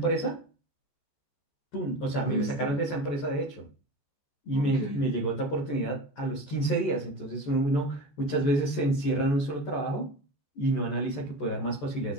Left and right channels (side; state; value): right; late; 14 ms